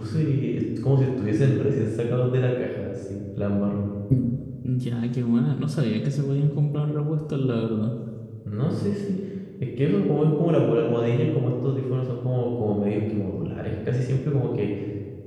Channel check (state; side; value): identical; both; correlation 1.00